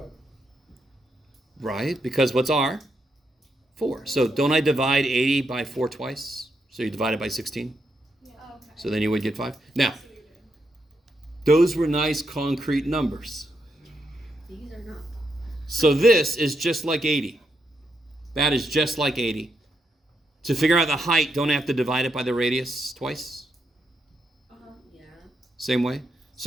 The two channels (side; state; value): both; normal; correlation 0.81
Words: Right? Because what's r? 4. So don't I divide 80 by 4 twice? So you divide it by 16. Yeah. Okay. So then you would get 5. Now, I see what you're doing. those were nice concrete numbers. These are not. So this is just like 80. That is just like 80. To figure out the height, don't I have to divide it by the radius twice? Yeah. Same way?